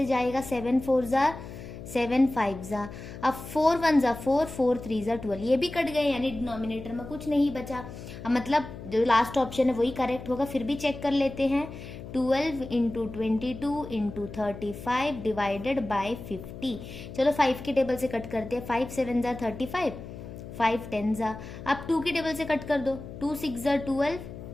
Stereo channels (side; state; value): left; noise; hum, 12 dB below the sound